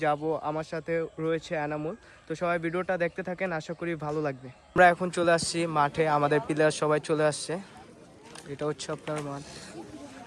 যাব, আমার সাথে রয়েছে এনামুল। তো সবাই ভিডিওটা দেখতে থাকেন, আশা করি ভালো লাগবে। আমরা এখন চলে আসছি মাঠে, আমাদের প্লেয়ার সবাই চলে আসছে। এটা হচ্ছে আপনার মাঠ।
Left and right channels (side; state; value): both; identical; correlation 1.00